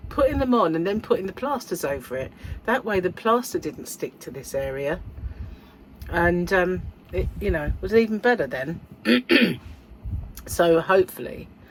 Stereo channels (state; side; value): identical; both; correlation 1.00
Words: putting them on, and then putting the plasters over it. That way, the plaster didn't stick to this area, and it, you know, was even better then. So hopefully